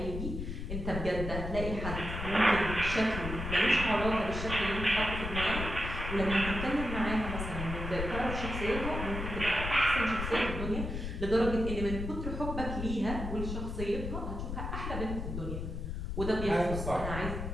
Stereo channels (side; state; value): left; noise; rumble, 5 dB below the sound